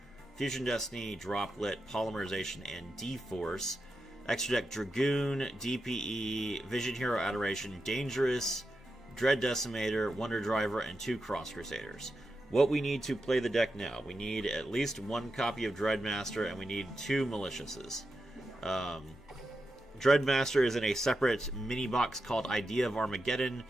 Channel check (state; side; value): normal; both; correlation 0.88